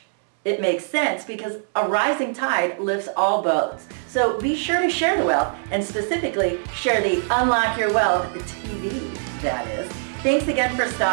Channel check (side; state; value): left; silent; digital silence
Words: it makes sense, because a rising tide lifts all boats. So be sure to share the wealth, and specifically share the Unlock Your Wealth TV, that is. Thanks again for